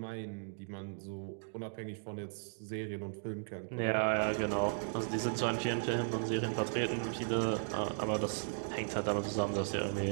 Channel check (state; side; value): silent; left; digital silence